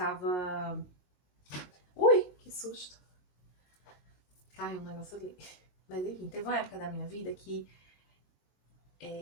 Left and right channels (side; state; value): right; late; 22 ms